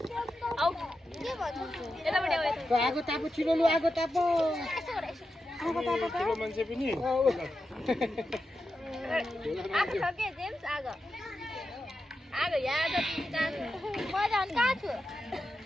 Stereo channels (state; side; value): normal; both; correlation 0.90